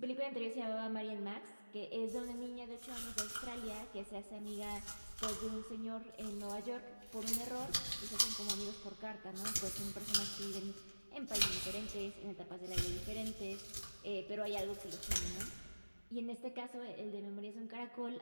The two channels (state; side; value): inverted; both; correlation -1.00